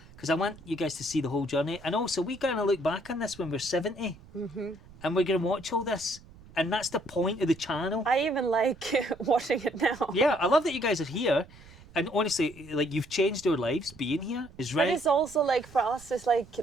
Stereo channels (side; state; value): right; noise; rumble, 22 dB below the sound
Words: because I want you guys to see the whole journey. And also, we're gonna look back on this when we're 70, and we're gonna watch all this. And that's the point of the channel. I even like watching it now. Yeah, I love that you guys are here. And honestly, like, you've changed our lives being here. Is right. But it's also like, for us, it's like